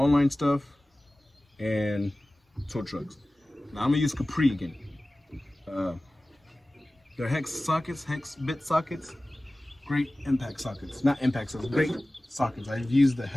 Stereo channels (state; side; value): normal; both; correlation 0.97